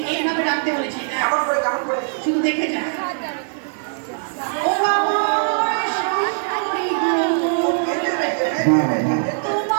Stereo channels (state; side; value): silent; left; digital silence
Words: এইভাবে ডাকতে বলেছি। দেখ, কেমন করে কেমন করে। শুধু দেখে যা। ও আমার শাশুড়ি গো,